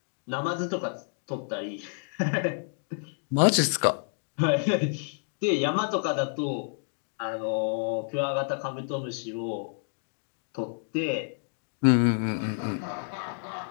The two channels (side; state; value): right; silent; digital silence